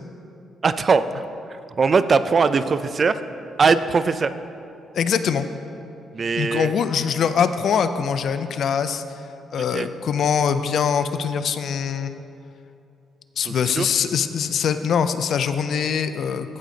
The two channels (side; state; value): both; normal; correlation 0.74